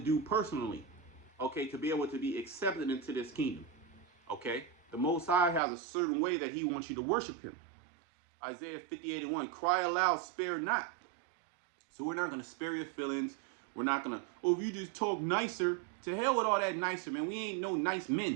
personally, okay, to be able to be accepted into this kingdom. Okay, the Most High has a certain way that he wants you to worship him. Isaiah 58:1, cry aloud, spare not. So we're not going to spare your feelings. We're not going to, if you just talk nicer, to hell with all that nicer, man. We ain't no nice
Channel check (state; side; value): drops out; left; at 5.6 s